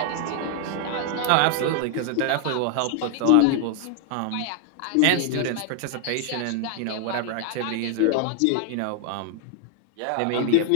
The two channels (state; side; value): different; both; correlation 0.00